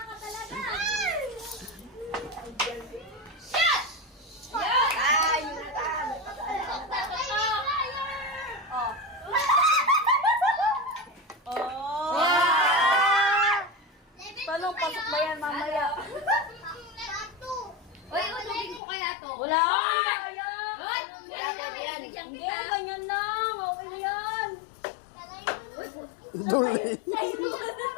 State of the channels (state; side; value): drops out; right; at 18.8 s